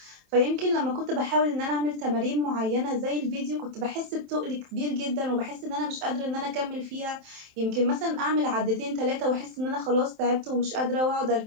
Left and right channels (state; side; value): late; left; 27 ms